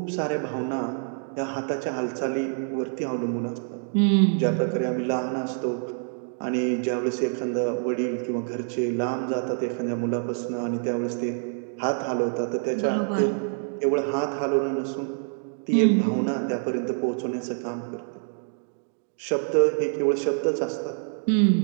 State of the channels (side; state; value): left; silent; 58 dB below the other